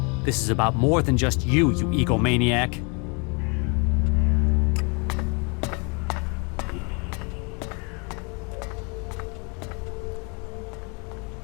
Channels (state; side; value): quieter; right; 33.1 dB